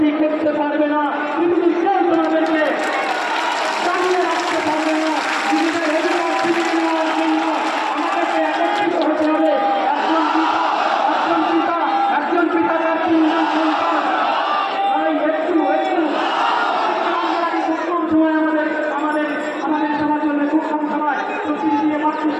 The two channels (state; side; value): identical; both; correlation 1.00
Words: করতে পারবে না পৃথিবীর কেউ তোমাদেরকে চালিয়ে রাখতে পারবে না নিজেদের অধিকার ফিরিয়ে নেওয়ার জন্য আমাদেরকে একত্রিত হতে হবে একজন পিতা তার তিনজন সন্তান তাই একটু সময় আমাদের সবার জন্য খুব কম সময় প্রতিদিন দিয়ে মাত্র